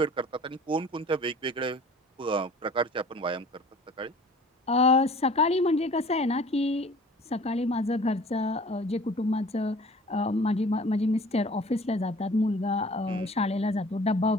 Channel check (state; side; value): normal; both; correlation 0.47